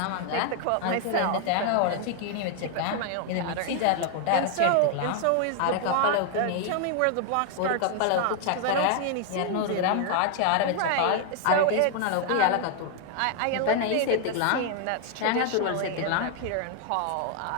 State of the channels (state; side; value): different; both; correlation 0.00